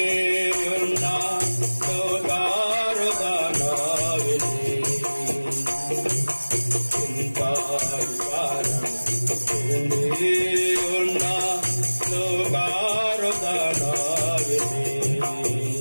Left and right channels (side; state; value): both; inverted; correlation -1.00